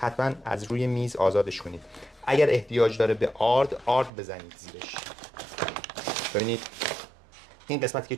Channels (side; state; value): left; drops out; at 4.1 s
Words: از روی میز آزادش کنید. اگر احتیاج داره به آرد بزنید زیرش. ببینید این قسمتی که